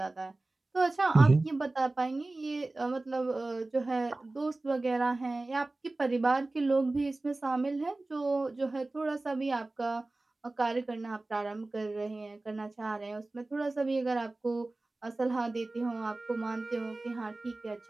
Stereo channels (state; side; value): quieter; left; 3.0 dB